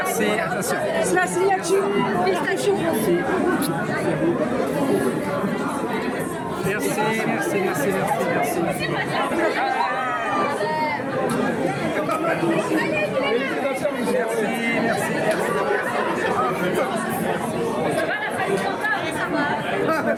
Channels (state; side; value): identical; both; correlation 1.00